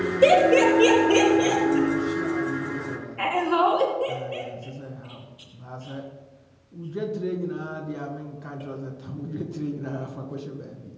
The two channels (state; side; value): identical; both; correlation 1.00